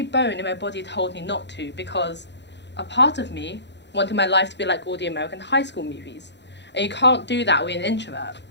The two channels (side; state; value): right; late; 0.51 ms